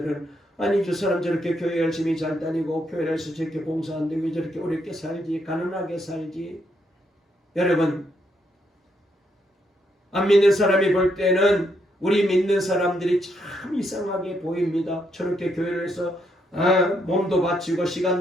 아니 저 사람 저렇게 교회 열심히 잘 다니고 교회에서 저렇게 봉사하는데 왜 저렇게 어렵게 살지 가난하게 살지. 여러분 안 믿는 사람이 볼 때는 우리 믿는 사람들이 참 이상하게 보입니다. 저렇게 교회를 해서 몸도 바치고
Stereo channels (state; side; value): normal; both; correlation 0.76